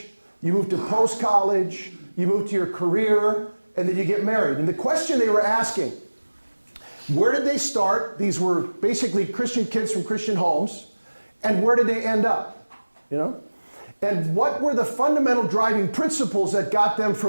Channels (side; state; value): both; inverted; correlation -1.00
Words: you move to post-college, you move to your career, and then you get married. And the question they were asking, where did they start? These were basically Christian kids from Christian homes. And where did they end up? You know? And what were the fundamental driving principles that got them